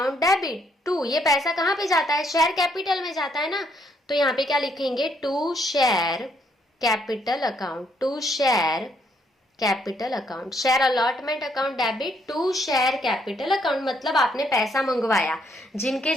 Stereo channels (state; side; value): normal; both; correlation 0.71